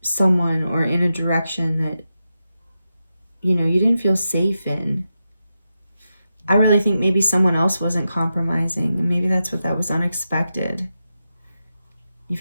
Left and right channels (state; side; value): inverted; both; correlation -0.89